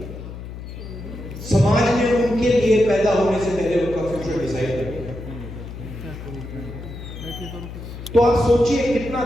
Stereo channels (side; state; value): left; noise; hum, 11 dB below the sound